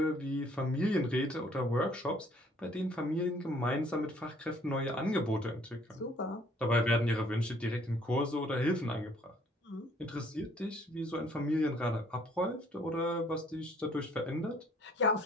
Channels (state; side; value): normal; both; correlation 0.61